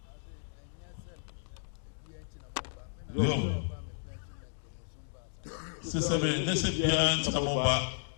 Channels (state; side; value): silent; right; digital silence